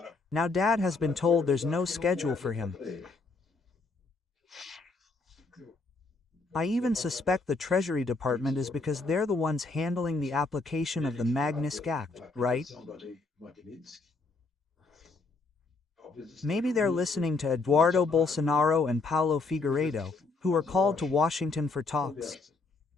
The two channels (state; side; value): quieter; right; 3.8 dB